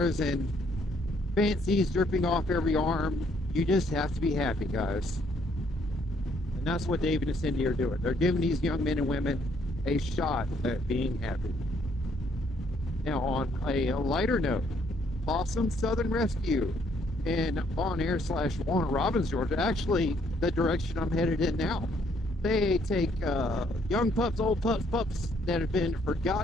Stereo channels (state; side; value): normal; both; correlation 0.68